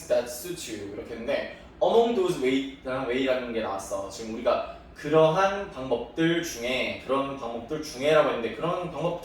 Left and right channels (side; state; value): both; identical; correlation 1.00